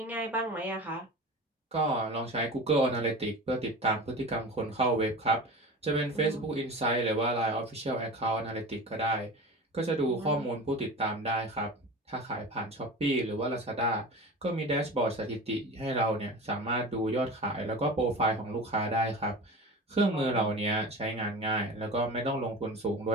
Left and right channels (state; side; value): normal; both; correlation 0.33